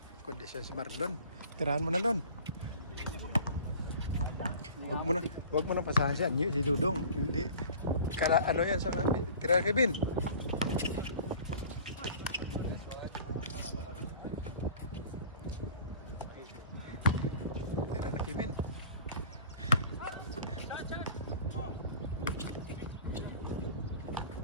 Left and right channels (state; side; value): inverted; both; correlation -0.44